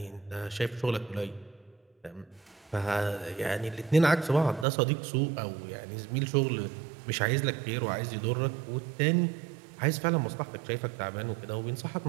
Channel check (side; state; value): left; drops out; at 4.7 s